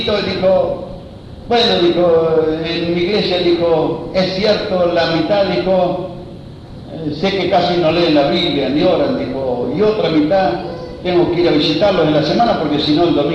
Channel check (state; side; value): identical; both; correlation 1.00